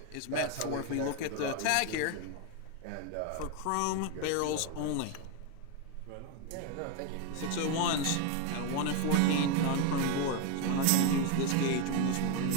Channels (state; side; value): different; both; correlation 0.01